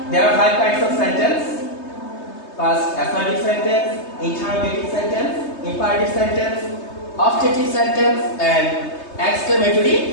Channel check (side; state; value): right; late; 3.2 ms